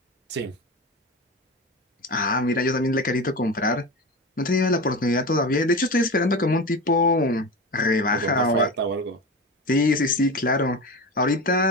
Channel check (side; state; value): both; normal; correlation 0.26